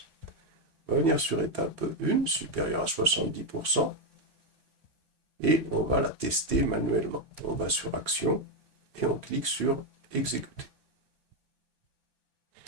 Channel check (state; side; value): late; left; 3.4 ms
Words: On va venir sur étape 1, supérieure à 70%, et on va la tester manuellement. On va sur Action, et on clique sur Exécuter.